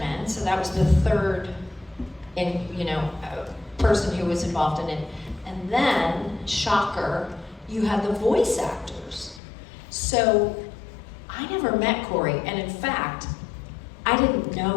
so that was the 3rd person who was involved in it. And then, shocker, you had the voice actors. So I never met Corey, and in fact, I didn't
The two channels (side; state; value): right; drops out; at 9.4 s